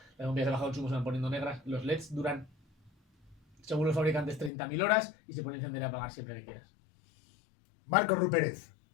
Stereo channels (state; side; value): drops out; right; at 4.5 s